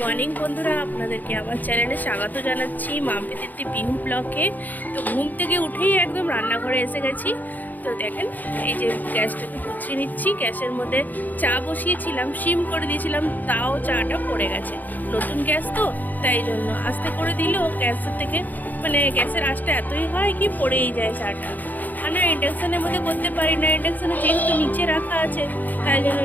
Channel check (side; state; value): right; late; 0.083 ms